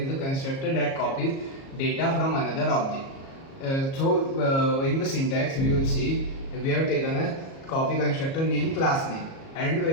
the constructor that copies data from another object. In the syntax we will see we have taken a copy constructor name class name, and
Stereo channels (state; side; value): late; right; 37 ms